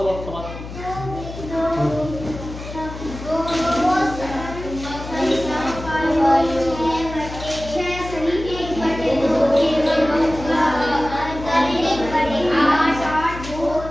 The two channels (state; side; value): noise; left; hum, 11 dB below the sound